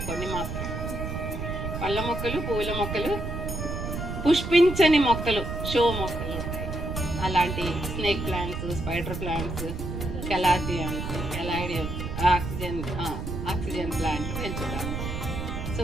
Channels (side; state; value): right; noise; rumble, 5 dB below the sound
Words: కొన్ని మాత్రం, పళ్ళ మొక్కలు, పువ్వుల మొక్కలు, పుష్పించని మొక్కలు, షో మొక్కలు ఉంటాయి. అలాంటి snake plants, spider plants, calatheas, caladiums, oxygen plant పెంచుతాను.